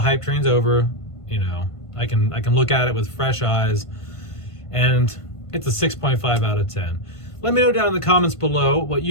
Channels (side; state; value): right; late; 1.5 ms